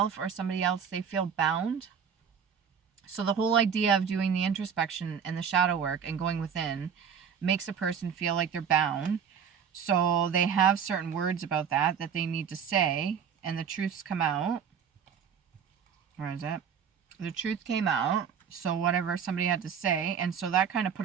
or somebody else, they feel bound. So the whole idea of doing the introspection and the shadow work and going within makes a person feel like they're bound. So they have certain words about that they need to say, and the truths come out. Where is it? The truth came out, so whatever somebody had to say, and so that kind of put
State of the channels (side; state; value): left; quieter; 7.4 dB